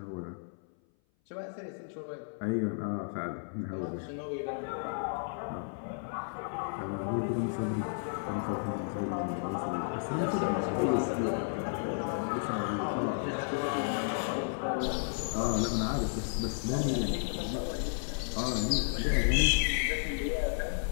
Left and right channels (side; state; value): right; silent; 56 dB below the other